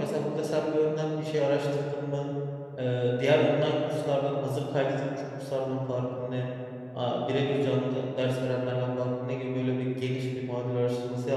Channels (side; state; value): both; identical; correlation 1.00